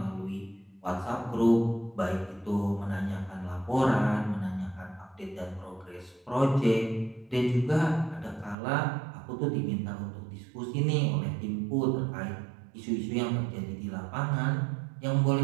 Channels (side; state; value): left; drops out; at 8.6 s